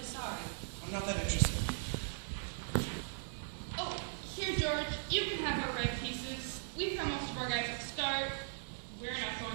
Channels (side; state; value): left; silent; 52 dB below the other